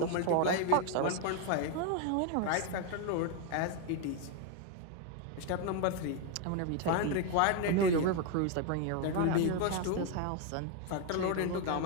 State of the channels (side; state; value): both; different; correlation 0.01